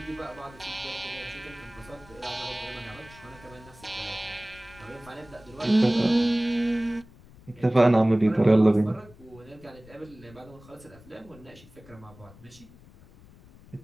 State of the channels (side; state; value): left; noise; rumble, 23 dB below the sound